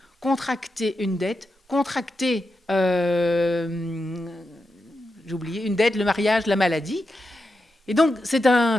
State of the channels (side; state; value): both; normal; correlation 0.88